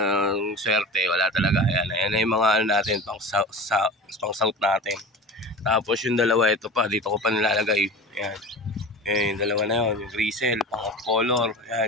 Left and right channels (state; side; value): normal; both; correlation 0.33